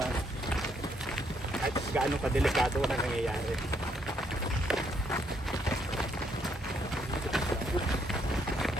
kahit gaano kadelikado na nangyayari.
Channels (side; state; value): both; normal; correlation 0.72